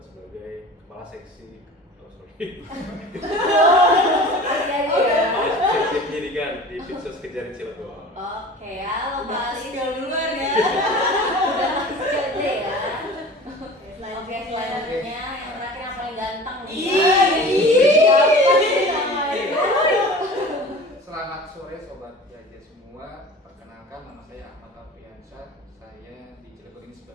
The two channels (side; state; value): both; normal; correlation 0.40